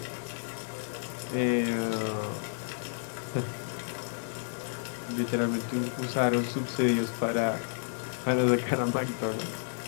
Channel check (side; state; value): right; silent; digital silence